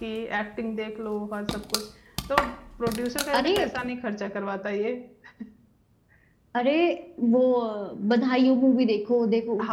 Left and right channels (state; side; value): identical; both; correlation 1.00